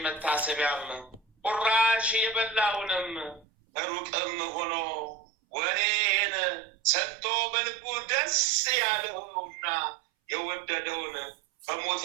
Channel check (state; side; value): drops out; left; at 3.5 s